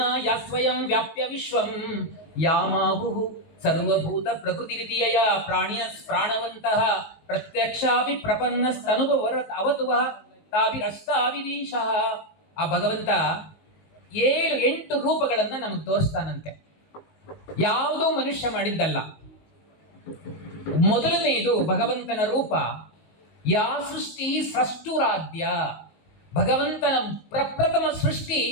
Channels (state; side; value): late; right; 19 ms